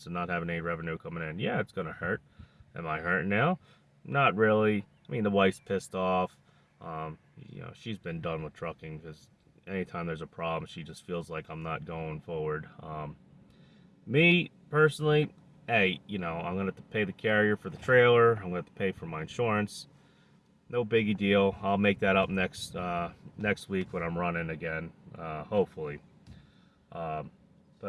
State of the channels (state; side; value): identical; both; correlation 1.00